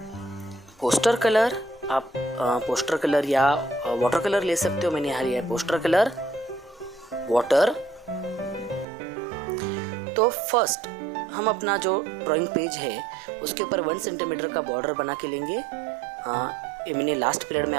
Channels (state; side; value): drops out; left; at 8.8 s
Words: पोस्टर कलर। आप पोस्टर कलर या वाटर कलर ले सकते हो। मैंने यहाँ लिया है पोस्टर कलर, वाटर। तो फर्स्ट हम अपना जो ड्राइंग पेज है उसके ऊपर 1 सेंटीमीटर का बॉर्डर बना के लेंगे। ये मैंने लास्ट पीरियड में